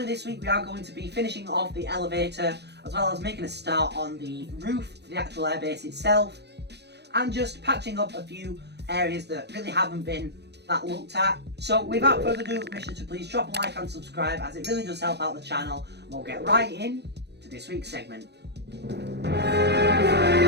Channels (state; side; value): late; left; 0.49 ms